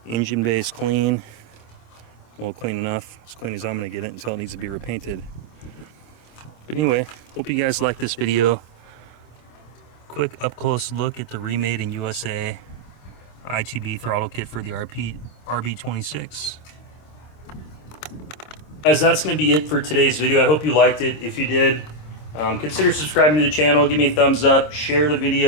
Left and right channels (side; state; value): right; late; 26 ms